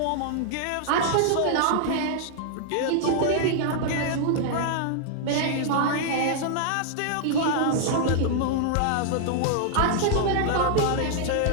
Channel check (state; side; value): different; both; correlation -0.01